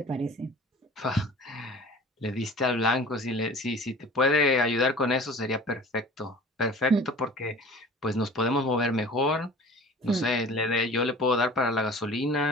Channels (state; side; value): normal; both; correlation 0.44